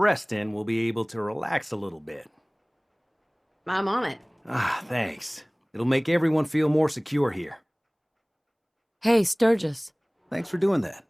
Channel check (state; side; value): identical; both; correlation 1.00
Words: will be able to relax a little bit. I'm on it. Ah, thanks. It'll make everyone feel more secure here. Hey, Sturgis. Thanks for doing that.